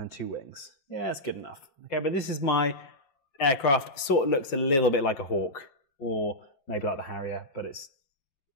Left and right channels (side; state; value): right; late; 5.8 ms